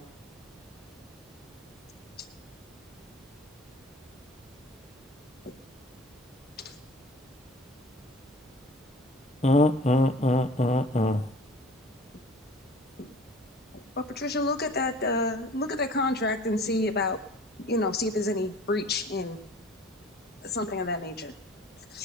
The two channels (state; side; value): normal; both; correlation 0.45